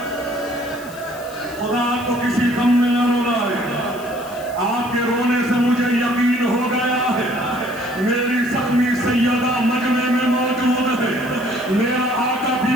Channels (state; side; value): noise; left; hiss, 20 dB below the sound